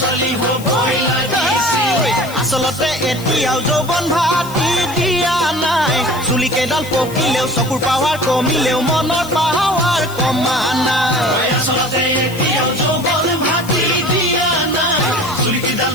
হ'বই লাগিছিল আচলতে এতিয়াও যৌৱন ভাতি দিয়া নাই চুলি কেইডাল পকিলেও চকুৰ পাৱাৰ কমিলেও মনৰ পাৱাৰ কমা নাই আচলতে এতিয়াও যৌৱন ভাতি দিয়া নাই চুলি কেইডাল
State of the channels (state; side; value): noise; left; hiss, 16 dB below the sound